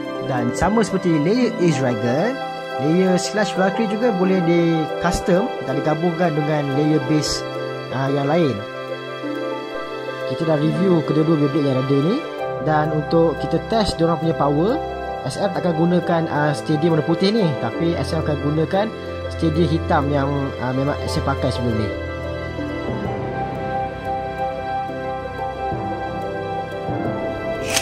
Dan sama seperti layer Ace Dragon, layer Slash Valkyrie juga boleh di custom dan digabungkan dengan layer base yang lain. Kita dah review kedua-dua Beyblade yang ada ni. Dan untuk kita test diorang punya power, SM tak akan gunakan stadium warna putih ni, tapi SM akan gunakan stadium hitam yang memang SM pakai sebelum ni.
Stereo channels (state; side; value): identical; both; correlation 1.00